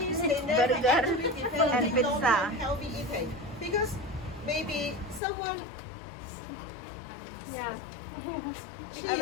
they never actually develop long-term healthy eating because maybe someone Yeah. she I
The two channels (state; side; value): drops out; right; at 5.2 s